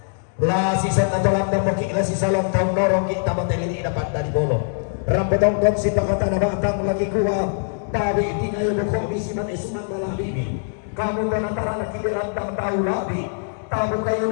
la sisa na tolang dan moki la sisa long taong norong kita matelili dapat dari bolong rambutong kon si pakata na batang laki kuat tabi tingay mo ko misiman esuman malah bimi kamu dan antara lagi dirantang tahu labi tahu kayu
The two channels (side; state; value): right; silent; digital silence